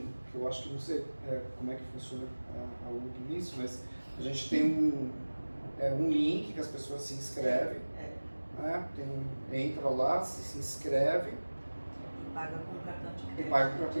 que eu acho que não sei como é que funciona a UG nisso, mas a gente tem um link que as pessoas se inscrevem, entra lá, se inscreve E paga com cartão de crédito. e paga com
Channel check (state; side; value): inverted; both; correlation -1.00